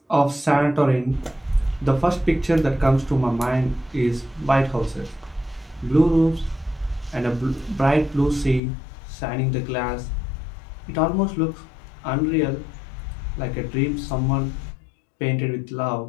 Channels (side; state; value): right; drops out; at 8.6 s